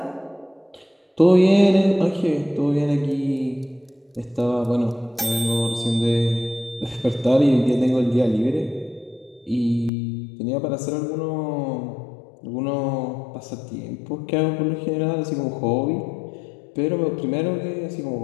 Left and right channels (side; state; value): right; drops out; at 9.9 s